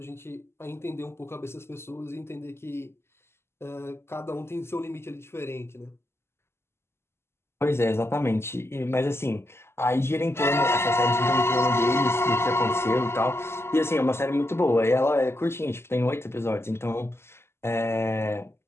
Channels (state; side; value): late; right; 0.12 ms